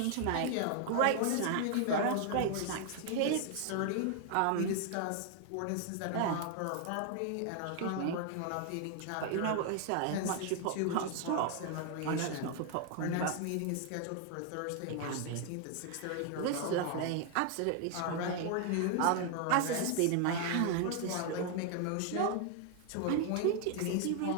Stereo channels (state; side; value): different; both; correlation 0.00